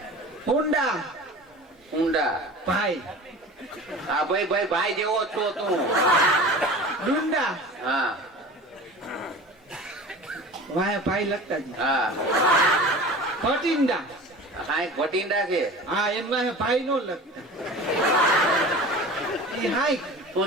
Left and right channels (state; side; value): normal; both; correlation 0.38